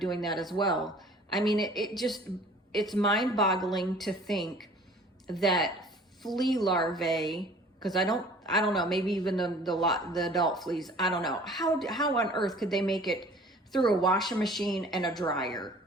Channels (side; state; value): both; normal; correlation 0.49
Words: that as well. I mean, it's mind-boggling to think that flea larvae, because I don't know, maybe even the adult fleas, I don't know, how on earth could they make it through a washing machine and a dryer?